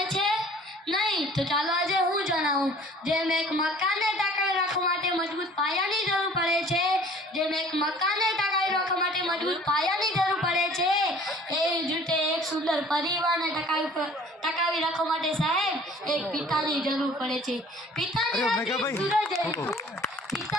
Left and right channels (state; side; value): normal; both; correlation 0.50